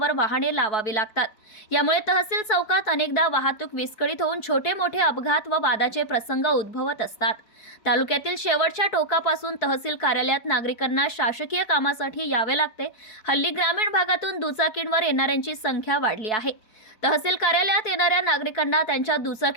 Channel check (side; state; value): right; late; 4.6 ms